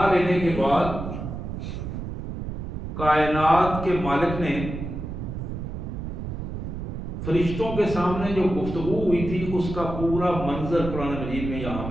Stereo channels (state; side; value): noise; right; rumble, 6 dB below the sound